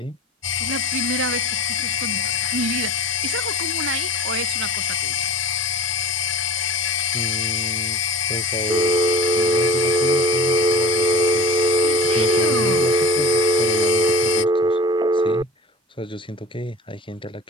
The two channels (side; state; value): both; normal; correlation 0.39